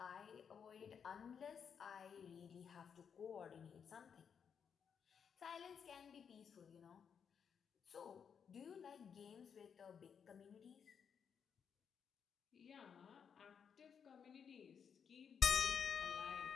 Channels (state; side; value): quieter; right; 7.1 dB